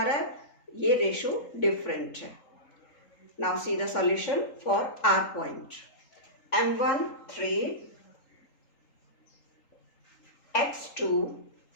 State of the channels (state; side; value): late; right; 3.8 ms